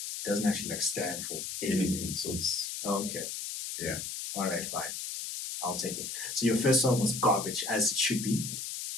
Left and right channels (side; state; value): left; noise; hiss, 5 dB below the sound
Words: It doesn't actually stand for Anything. So it's okay. Yeah. All right, fine. I'll take it. So your first song was garbage, as it should be.